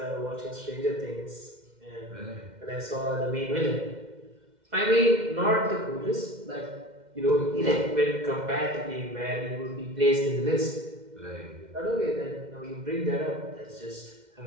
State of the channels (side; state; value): left; late; 2.1 ms